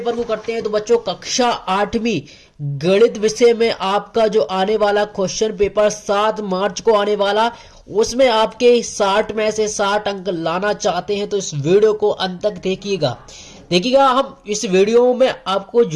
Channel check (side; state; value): both; identical; correlation 1.00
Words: को करते हैं तो बच्चों कक्षा 8वीं गणित विषय में आपका जो आने वाला क्वेश्चन पेपर 7 मार्च को आने वाला, उसमें आपके 60 में से 60 अंक लाना चाहते हैं तो इस वीडियो को अंत तक देखिएगा। हम इस वीडियो में आपको